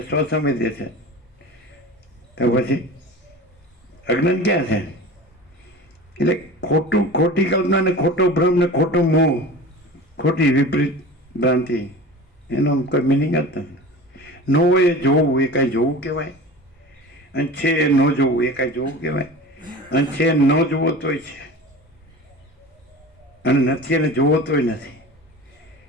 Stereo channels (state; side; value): normal; both; correlation 0.36